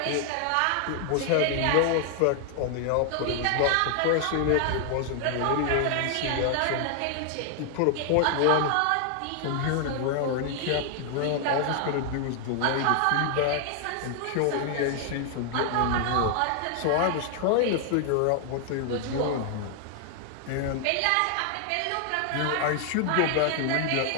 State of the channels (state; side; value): different; both; correlation 0.00